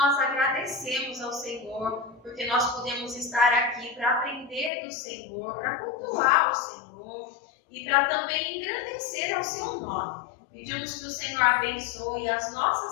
agradecemos ao Senhor, porque nós podemos estar aqui para aprender do Senhor, para cultuar o Senhor e para também engrandecer ao seu nome. Pedimos que o Senhor abençoe as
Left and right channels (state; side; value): drops out; right; at 4.7 s